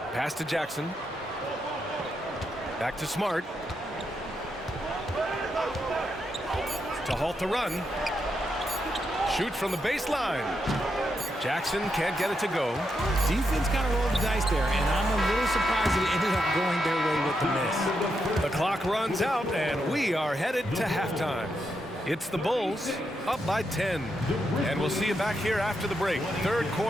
Pass to Jackson. Back to Smart. To halt the run. Shoots from the baseline. Jackson can't get it to go. Defense kind of rolled the dice there, and I'm a little surprised that it ended up going their way with the miss. The clock runs out, and we are headed to halftime. It's the Bulls up by 10. And we'll see you back here after the break. Third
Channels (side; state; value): both; normal; correlation 0.83